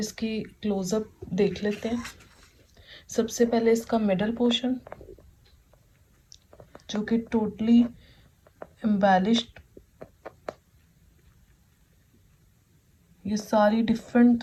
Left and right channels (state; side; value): identical; both; correlation 1.00